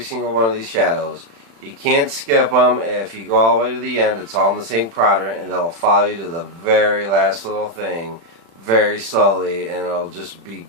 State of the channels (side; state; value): left; late; 36 ms